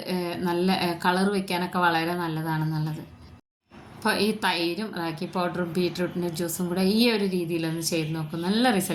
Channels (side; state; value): both; identical; correlation 1.00